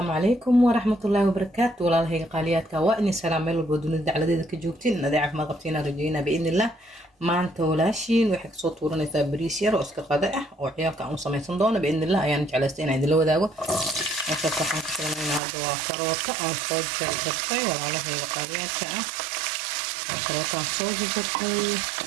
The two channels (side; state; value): left; drops out; at 15.4 s